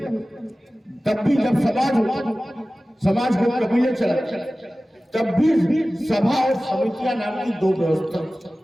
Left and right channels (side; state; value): both; normal; correlation 0.97